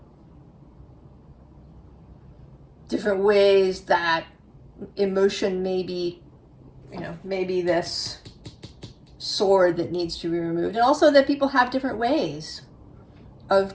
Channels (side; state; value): both; identical; correlation 1.00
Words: Different ways that emotion may be, maybe this sword that needs to be removed. And also that people have different ways